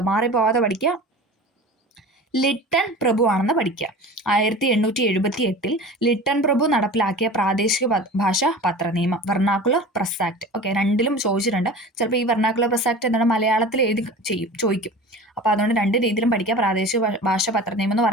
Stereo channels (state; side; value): normal; both; correlation 0.37